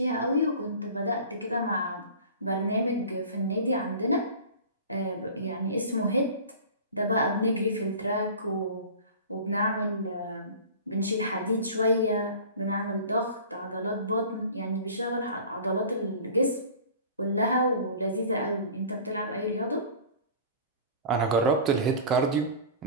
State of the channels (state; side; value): inverted; both; correlation -0.40